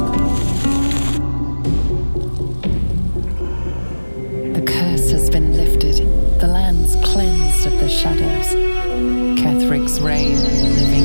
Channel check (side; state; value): both; inverted; correlation -1.00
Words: The curse has been lifted. The land's cleansed of the shadows. Kethric's reign of the